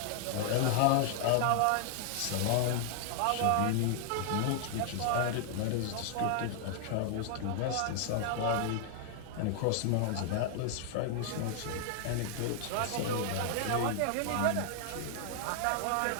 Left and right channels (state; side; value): different; both; correlation 0.00